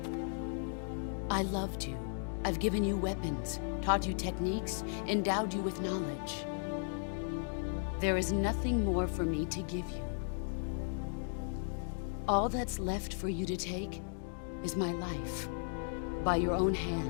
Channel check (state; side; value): silent; right; digital silence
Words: I loved you. I've given you weapons, taught you techniques, endowed you with knowledge. There is nothing more for me to give you. All that's left for you to take is my life, by your own